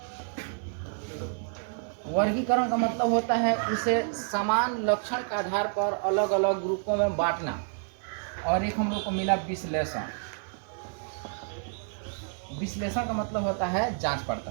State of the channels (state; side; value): silent; left; 59 dB below the other